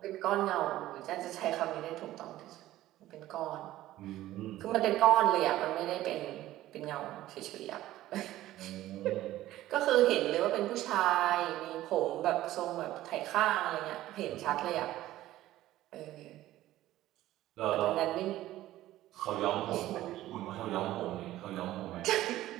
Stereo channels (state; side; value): quieter; left; 14.9 dB